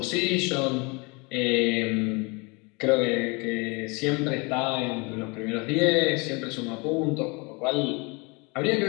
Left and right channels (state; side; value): quieter; right; 29.1 dB